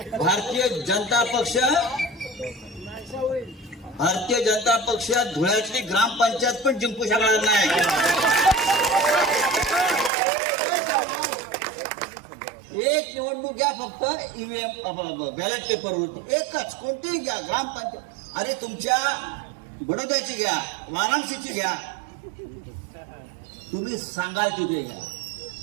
भारतीय जनता पक्ष धुळ्यातली ग्रामपंचायत पण जिंकू शकणार नाही. एक निवडणूक घ्या फक्त ईव्हीएम बॅलेट पेपरवरती, एकच, कोणतीही घ्या ग्रामपंचायत. अरे तुमच्या बडोद्याची घ्या, वाराणसीची घ्या, तुम्ही सांगाल तिथे घ्या.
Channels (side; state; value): left; drops out; at 10.1 s